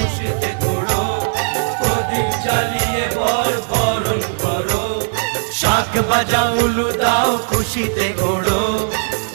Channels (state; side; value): silent; left; digital silence